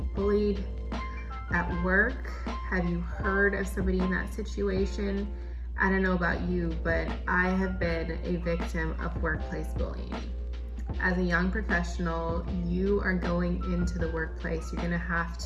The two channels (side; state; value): both; identical; correlation 1.00